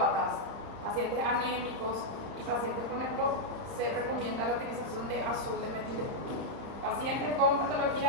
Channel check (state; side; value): late; left; 31 ms